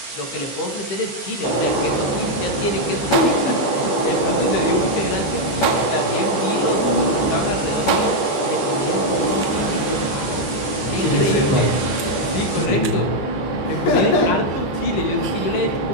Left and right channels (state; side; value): late; right; 15 ms